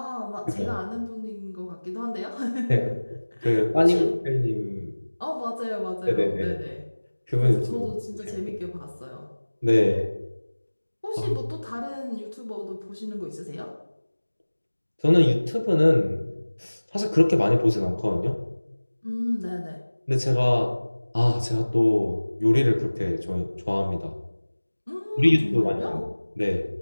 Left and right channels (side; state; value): both; inverted; correlation -1.00